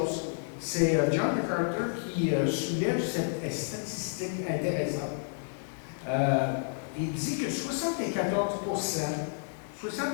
C'est John MacArthur qui soulève cette statistique intéressante. Il dit que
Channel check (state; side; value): silent; right; digital silence